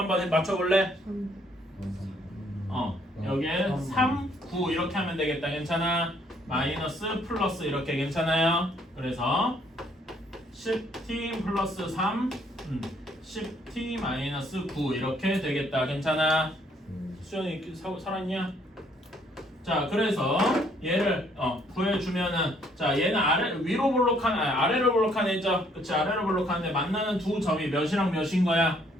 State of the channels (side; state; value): both; normal; correlation 0.66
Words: 맞춰볼래? 여기에 3, 9 이렇게 하면 되겠다. 괜찮아? 마이너스 플러스 이렇게 괜찮아요? 그래서 10t 플러스 3 10t 마이너스 9 이렇게 되겠다. 괜찮아? 수연이 살았냐? 자 그래서 얘를 구해주면은 자 얘는 위로 볼록한 아래로 볼록한 애죠. 그치? 아래로 볼록한데 만나는 두 점이 몇이랑 몇인 거야?